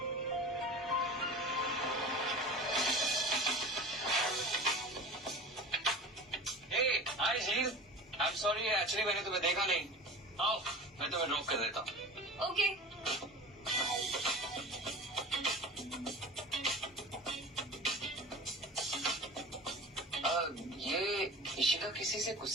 हाय झील, आई एम सॉरी, एक्चुअली मैंने तुम्हें देखा नहीं। आओ मैं तुम्हें ड्रॉप कर देता हूँ। ओके। ये इशिका किसी से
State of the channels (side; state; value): both; normal; correlation 0.36